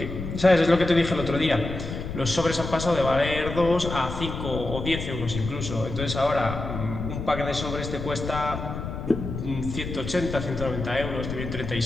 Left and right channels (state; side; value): noise; left; rumble, 6 dB below the sound